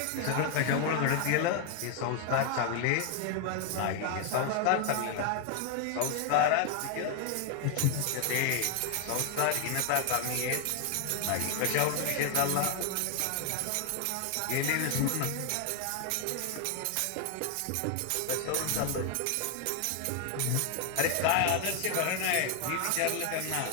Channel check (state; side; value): different; both; correlation 0.00